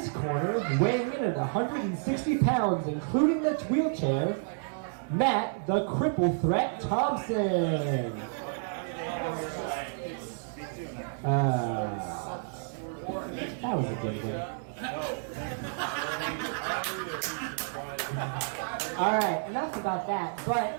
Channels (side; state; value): left; silent; 58 dB below the other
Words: corner, weighing in at 160 pounds, including the wheelchair, Matt the Cripple Threat Thompson. That was a good one. Alright, enough about that, but